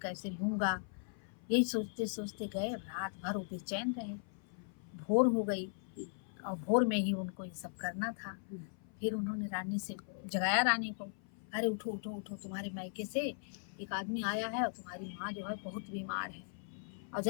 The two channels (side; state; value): right; silent; 52 dB below the other